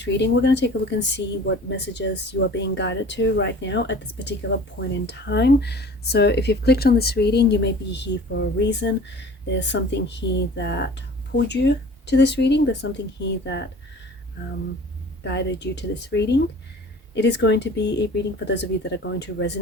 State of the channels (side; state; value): both; normal; correlation 0.45